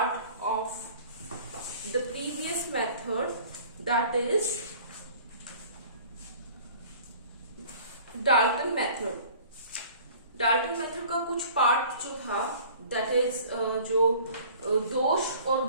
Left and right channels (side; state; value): both; inverted; correlation -0.48